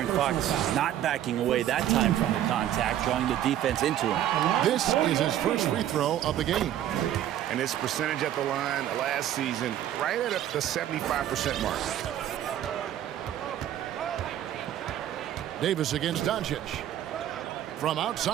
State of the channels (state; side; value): quieter; left; 11.7 dB